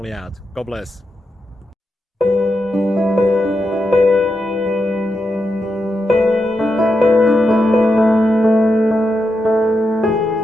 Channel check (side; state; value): both; normal; correlation 0.86